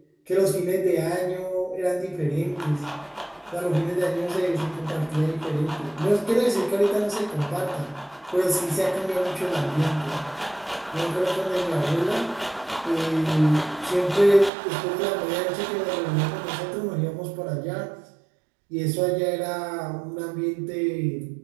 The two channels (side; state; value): left; drops out; at 14.5 s